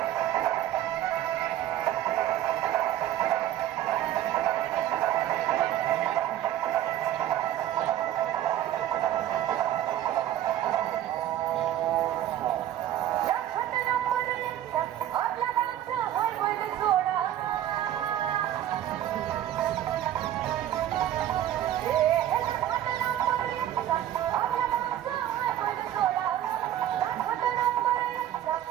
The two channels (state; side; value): quieter; left; 12.1 dB